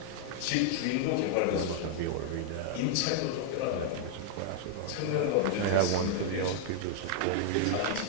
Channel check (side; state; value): both; different; correlation -0.01